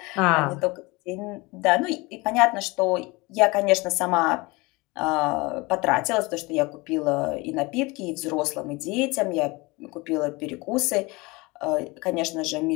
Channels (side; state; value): right; quieter; 24.3 dB